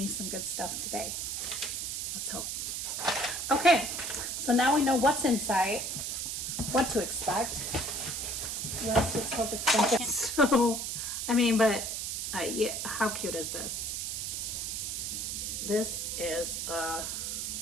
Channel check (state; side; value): noise; right; hiss, 3 dB below the sound